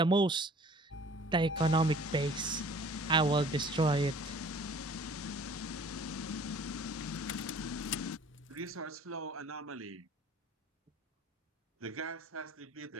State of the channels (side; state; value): both; normal; correlation 0.50